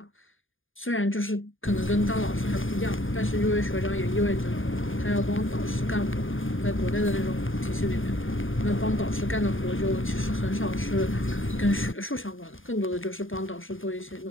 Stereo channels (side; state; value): right; late; 0.58 ms